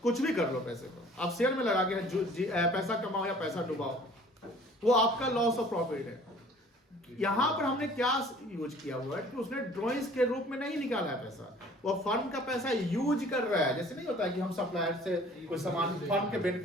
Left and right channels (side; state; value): both; normal; correlation 0.51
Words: कुछ भी कर लो पैसे को, आप शेयर में लगा के पैसा कमाओ या पैसा डुबाओ, वो आपका लॉस ऑफ प्रॉफिट है। यहाँ पर हमने क्या यूज किया हुआ है कि उसने ड्राइंग्स के रूप में नहीं निकाला है पैसा, वो फर्म का पैसा यूज कर रहा है। जैसे नहीं होता है कि हम सप्लायर से कोई सामान फर्म के